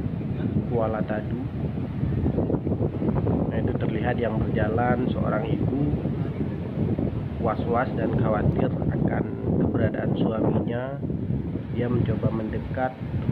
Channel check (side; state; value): both; identical; correlation 1.00